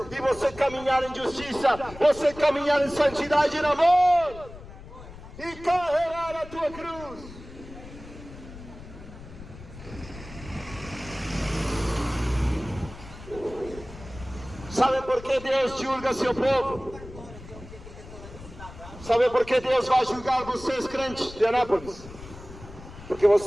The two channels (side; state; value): left; noise; rumble, 16 dB below the sound